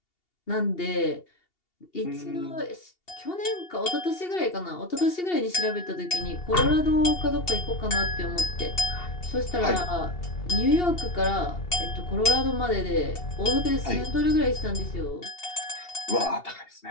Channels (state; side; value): late; right; 2.8 ms